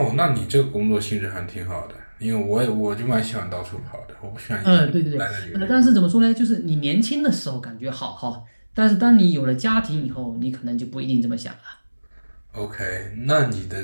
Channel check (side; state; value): both; inverted; correlation -1.00